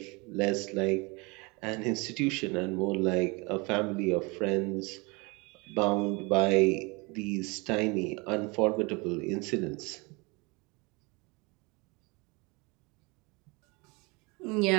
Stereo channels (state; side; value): quieter; left; 27.3 dB